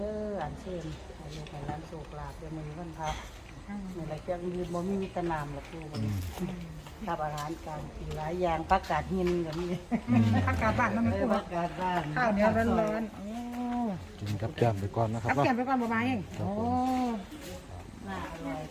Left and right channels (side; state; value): both; identical; correlation 1.00